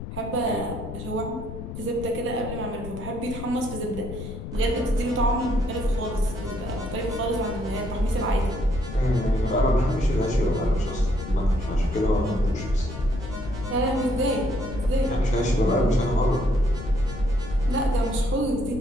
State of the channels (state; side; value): noise; left; rumble, 9 dB below the sound